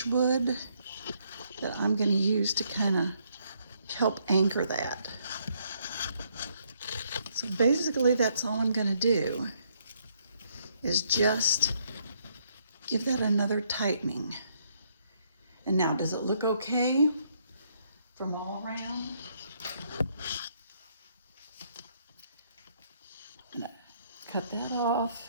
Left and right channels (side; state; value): both; inverted; correlation -0.71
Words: wood that I'm going to use to kind of help anchor that. So basically that's all I'm going to do is just give that another tightening. And now, does it look okay from all around? I'm going to cut that